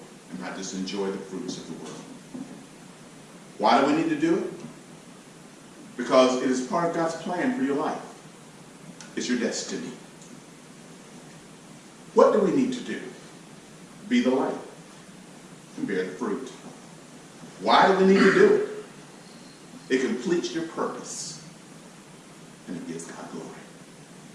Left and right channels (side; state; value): both; identical; correlation 1.00